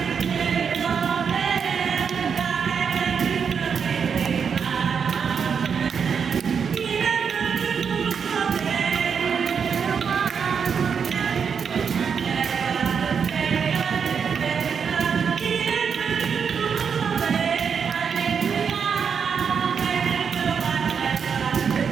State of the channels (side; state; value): left; quieter; 6.6 dB